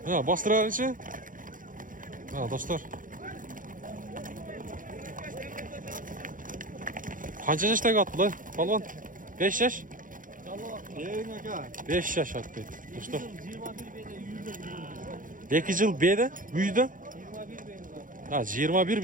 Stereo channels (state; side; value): late; left; 0.39 ms